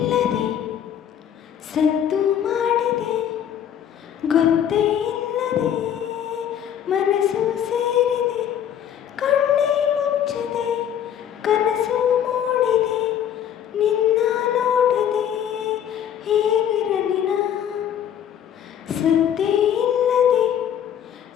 ಸದ್ದು ಮಾಡಿದೆ, ಗೊತ್ತೇ ಇಲ್ಲದೆ ಮನಸ್ಸು ಸೇರಿದೆ, ಕಣ್ಣೇ ಮುಚ್ಚದೆ ಕನಸು ಮೂಡಿದೆ, ನಿನ್ನ ನೋಡದೆ ಹೇಗಿರಲಿ ನಾ. ಸದ್ದೇ ಇಲ್ಲದೆ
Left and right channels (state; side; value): quieter; right; 9.5 dB